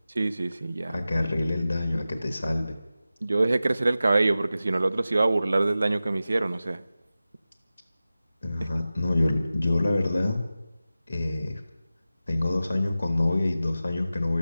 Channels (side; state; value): both; inverted; correlation -0.95